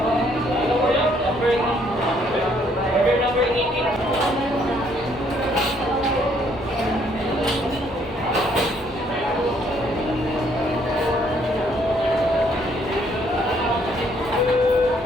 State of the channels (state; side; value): normal; both; correlation 0.67